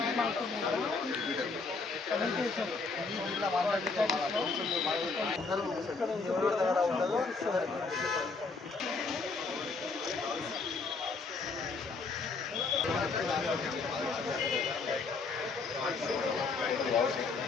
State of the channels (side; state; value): right; quieter; 4.2 dB